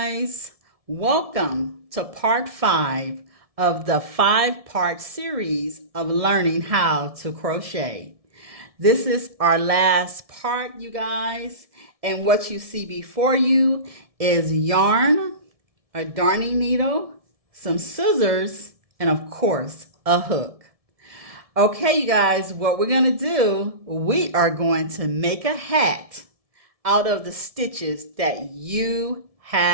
welcome to part 5 of the 5-part series of learning how to crochet. This is our last part, you guys, and what you see before you is yarn, a darning needle, some scissors, and of course, a hook. Okay, you guys, what we're going to do, we are going to make a hat out of the stitches that you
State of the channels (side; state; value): left; late; 1.7 ms